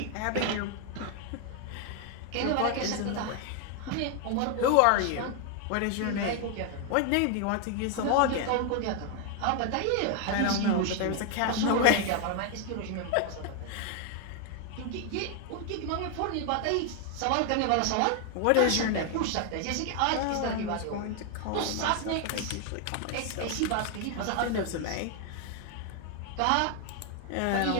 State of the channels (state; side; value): different; both; correlation 0.00